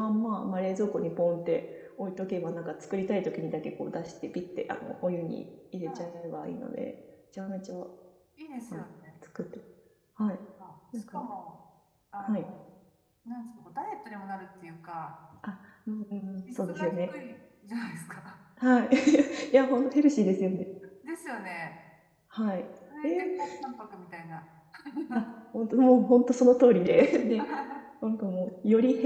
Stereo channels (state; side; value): identical; both; correlation 1.00